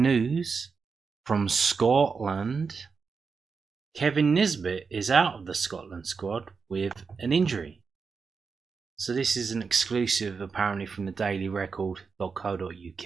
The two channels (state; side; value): quieter; left; 5.2 dB